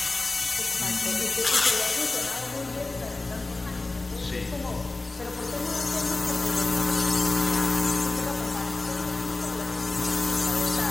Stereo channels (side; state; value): right; quieter; 3.2 dB